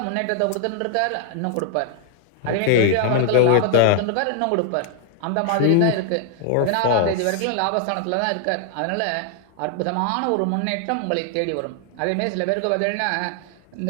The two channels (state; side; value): different; both; correlation 0.00